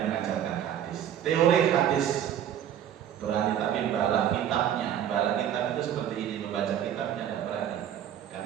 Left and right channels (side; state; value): left; quieter; 10.1 dB